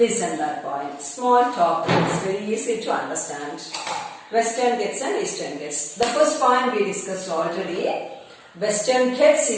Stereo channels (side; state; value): both; identical; correlation 1.00